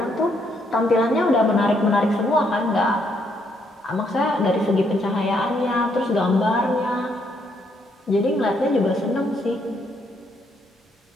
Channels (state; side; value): normal; both; correlation 0.73